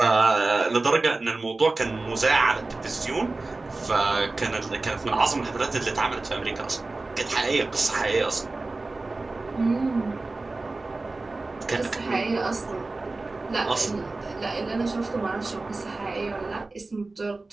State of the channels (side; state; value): left; quieter; 3.3 dB